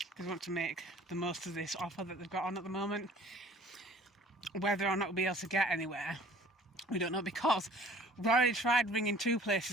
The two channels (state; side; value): normal; both; correlation 0.51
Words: because we want to make the most of this offer that they've got on at the moment. Whether or not we'll be able to get anywhere, we don't know, because we've already tried ringing 2